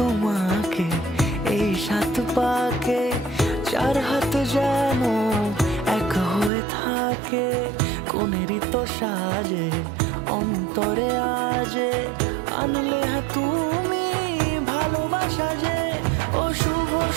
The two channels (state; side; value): drops out; left; at 6.5 s